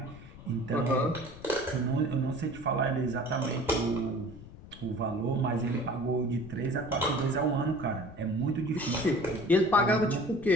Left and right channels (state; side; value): noise; left; rumble, 17 dB below the sound